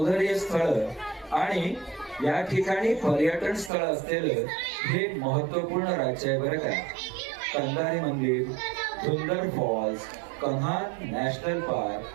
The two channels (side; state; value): left; drops out; at 3.7 s